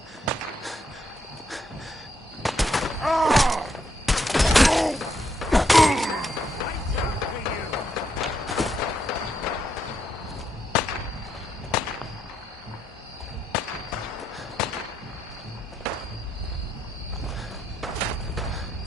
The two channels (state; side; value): normal; both; correlation 0.78